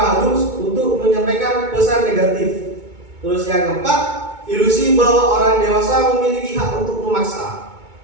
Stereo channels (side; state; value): left; late; 2.2 ms